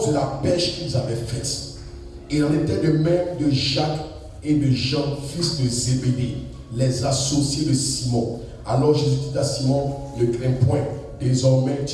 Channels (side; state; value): both; identical; correlation 1.00